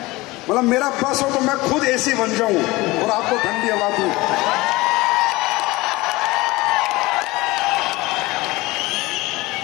मतलब मेरा बस हो तो मैं खुद एसी बन जाऊं और आपको ठंडी हवा दूं।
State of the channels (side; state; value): right; quieter; 20.9 dB